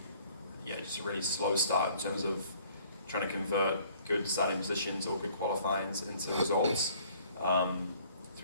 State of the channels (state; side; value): inverted; both; correlation -0.57